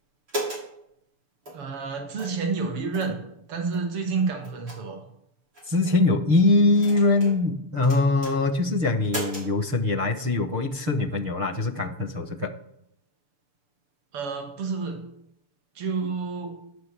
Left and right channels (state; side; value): late; left; 6.6 ms